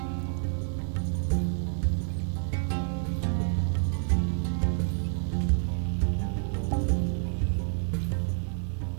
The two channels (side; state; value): left; silent; 59 dB below the other